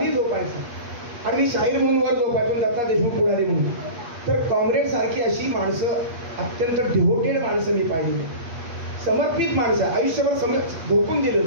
झोपायचा आणि मी शाहीर म्हणून वर झोपायचो, दत्ता देशमुख पुढारी म्हणून. तर कॉम्रेड सारखी अशी माणसं, अत्यंत डिव्होटेड माणसं मी पाहिलेली, समर्पित माणसं, आयुष्यभर झोकून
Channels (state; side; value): late; left; 8.4 ms